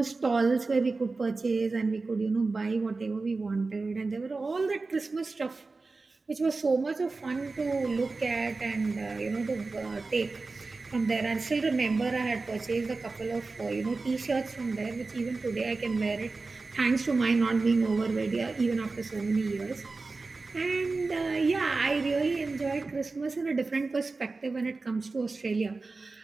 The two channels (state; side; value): quieter; left; 3.8 dB